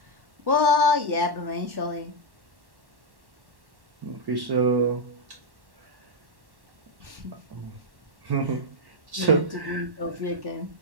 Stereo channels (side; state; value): left; late; 1.1 ms